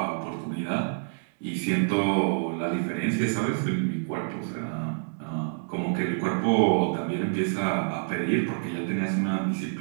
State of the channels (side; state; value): left; silent; digital silence